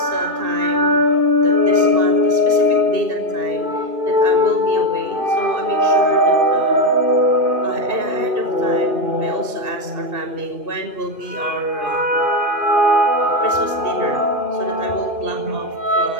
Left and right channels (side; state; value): left; late; 2.7 ms